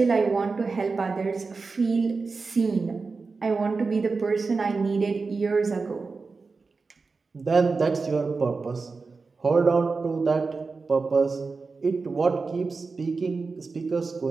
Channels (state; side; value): quieter; left; 4.3 dB